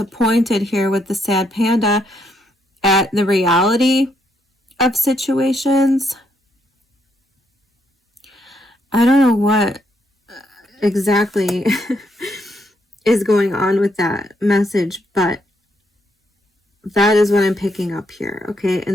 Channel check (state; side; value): normal; both; correlation 0.75